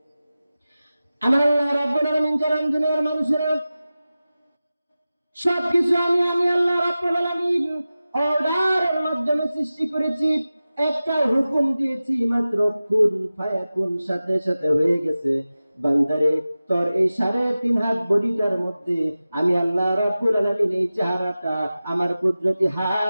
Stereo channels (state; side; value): inverted; both; correlation -0.95